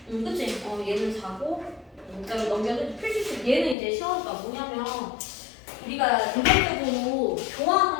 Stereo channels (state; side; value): drops out; right; at 3.8 s